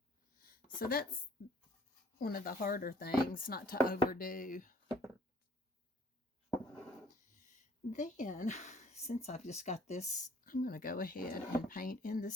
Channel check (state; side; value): normal; both; correlation 0.57